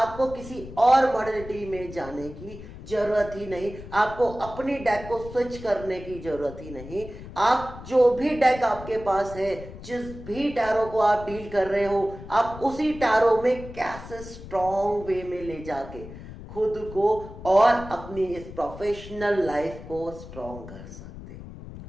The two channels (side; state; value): left; noise; rumble, 14 dB below the sound